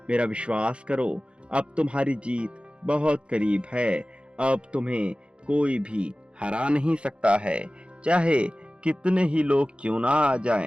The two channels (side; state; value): left; late; 0.058 ms